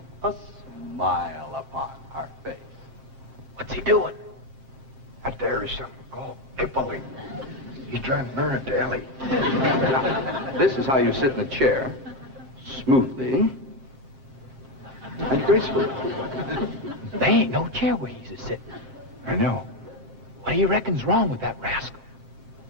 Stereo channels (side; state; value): left; late; 7.4 ms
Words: a smile upon our face. What's he doing? Out there is something called Kipling. He's trying to learn it to Elly. Now, this is how you sit in a chair, smoothly and gracefully. There ain't no chair where he's a-sitting. I know. What do you reckon's wrong with that rascal?